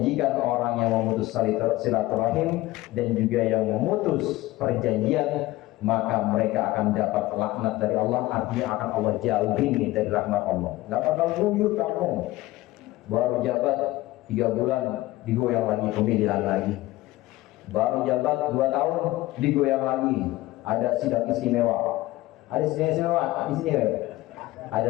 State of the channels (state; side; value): quieter; right; 17.9 dB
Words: orang yang memutus silaturahim dan juga yang memutus perjanjian, maka mereka akan dapat laknat dari Allah. Artinya akan Allah jauhin dari rahmat Allah. Gak bakal guyur kamu, baru jabat 3 bulan digoyang lagi, pemilihan lagi. Baru jabat 2 tahun digoyang lagi, ada sidang istimewa. Ada sidang istimewa di sini kan?